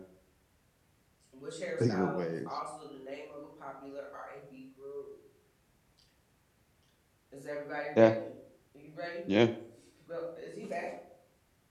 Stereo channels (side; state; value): both; identical; correlation 1.00